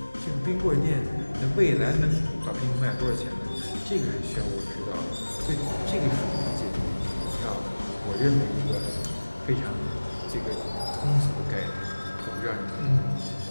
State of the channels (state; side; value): inverted; both; correlation -1.00